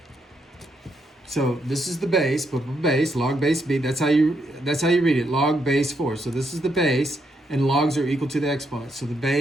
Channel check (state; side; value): normal; both; correlation 0.78